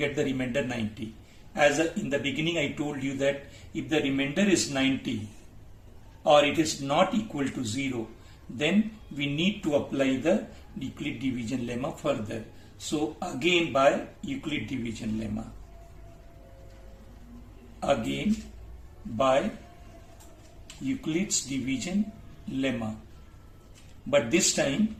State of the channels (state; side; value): identical; both; correlation 1.00